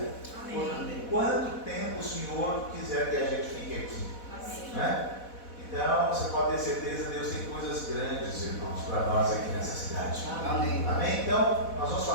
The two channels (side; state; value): right; late; 4.1 ms